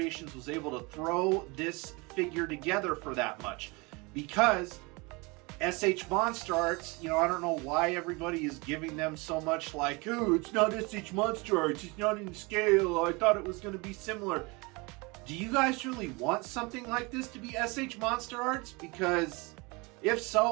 was able to throw this figure together for that much. Because SH Monster Arts, I don't know why everybody is giving them so much like, oh, it's not SH Monster Arts, it's not in scale, I thought it was going to be similar. Do you guys really want something like this to be SH Monster Arts? Because if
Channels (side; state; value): left; quieter; 26.9 dB